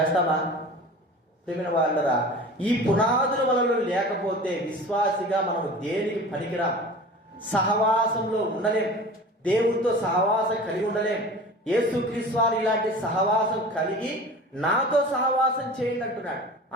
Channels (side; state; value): both; normal; correlation 0.38